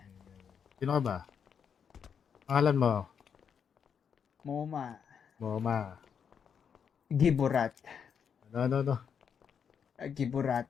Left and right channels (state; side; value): quieter; right; 7.2 dB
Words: Sino ka ba? Pangalan mo? Moma. Moma. Giburat. Ano. Giburat.